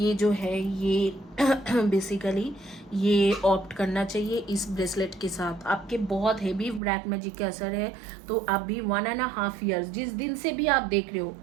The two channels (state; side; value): drops out; left; at 6.8 s